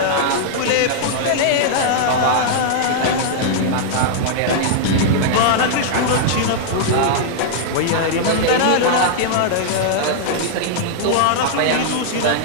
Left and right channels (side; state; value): both; different; correlation -0.01